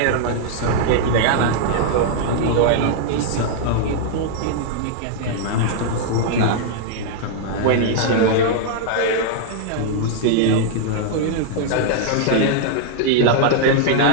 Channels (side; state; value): both; different; correlation -0.01